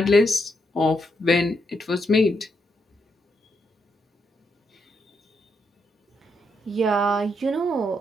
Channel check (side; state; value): both; normal; correlation 0.79